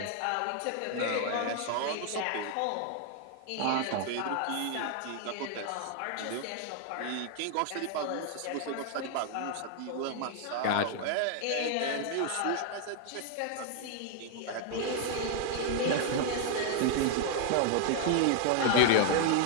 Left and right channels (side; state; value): both; different; correlation 0.00